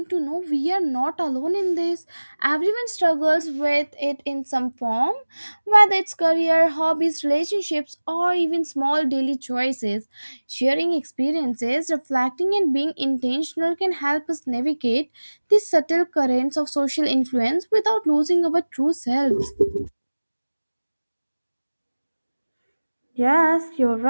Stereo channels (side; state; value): both; inverted; correlation -1.00